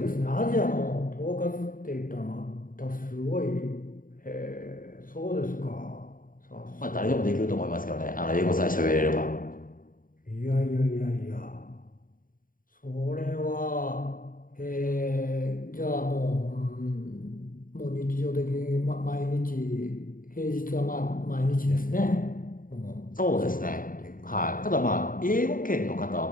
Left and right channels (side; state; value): right; late; 0.40 ms